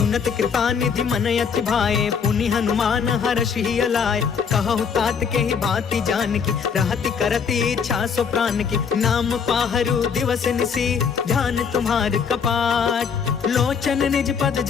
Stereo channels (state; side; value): quieter; right; 6.5 dB